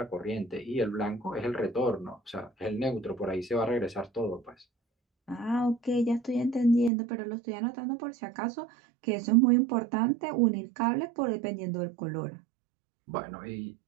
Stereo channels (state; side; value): drops out; left; at 6.9 s